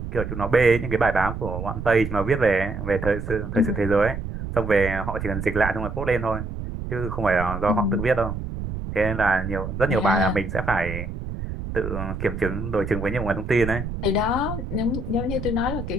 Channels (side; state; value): right; noise; rumble, 6 dB below the sound